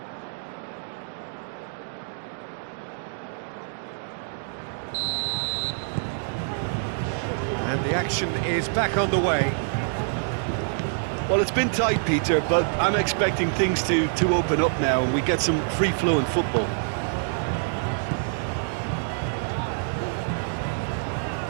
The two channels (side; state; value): left; silent; digital silence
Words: And the action is back on the way. Well, it's been tight, Peter, but I'm expecting things to open up now and we get some free-flowing football.